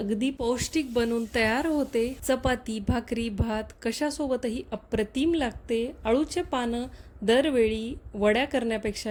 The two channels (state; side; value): identical; both; correlation 1.00